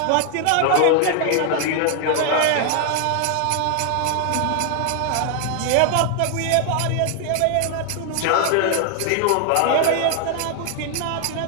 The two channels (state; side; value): different; both; correlation 0.00